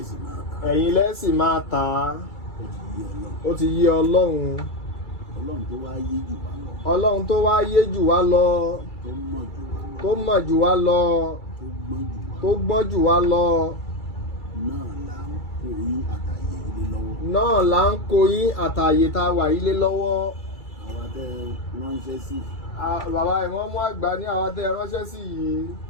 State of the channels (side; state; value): right; late; 2.3 ms